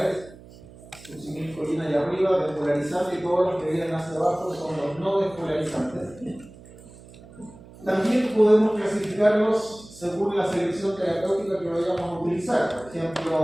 Succinilcolina allá arriba, despolarizante, y todos los que vienen hacia abajo son los no despolarizantes. También podemos clasificarlos según la selección terapéutica que vayamos a utilizar. Por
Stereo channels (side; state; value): right; noise; hum, 20 dB below the sound